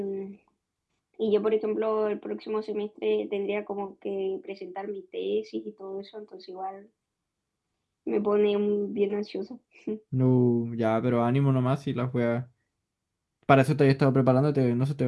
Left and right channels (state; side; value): identical; both; correlation 1.00